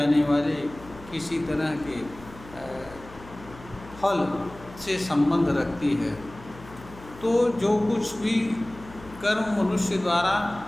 वाले किसी तरह के फल से संबंध रखती है। तो जो कुछ भी कर्म मनुष्य द्वारा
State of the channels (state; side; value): noise; left; hum, 18 dB below the sound